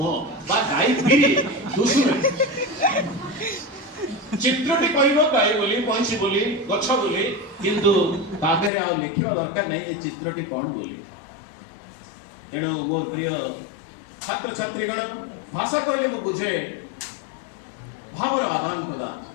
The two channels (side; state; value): right; drops out; at 8.7 s